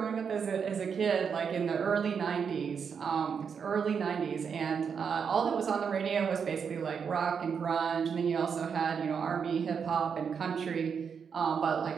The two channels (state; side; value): quieter; left; 6.6 dB